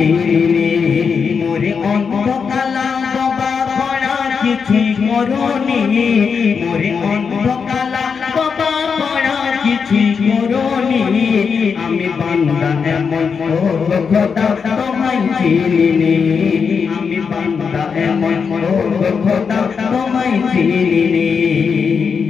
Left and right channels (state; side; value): quieter; right; 5.9 dB